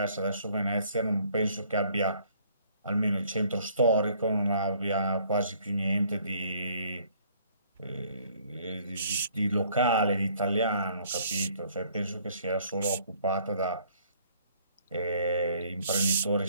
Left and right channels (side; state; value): both; inverted; correlation -0.61